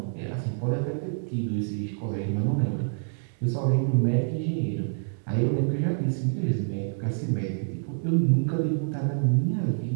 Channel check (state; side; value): silent; left; digital silence